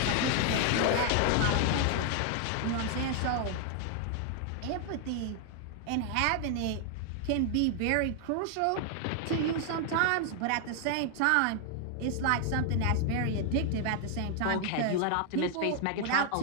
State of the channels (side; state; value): both; different; correlation 0.00